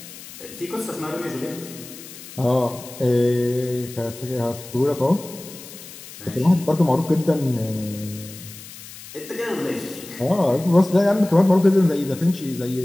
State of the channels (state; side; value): noise; left; hiss, 16 dB below the sound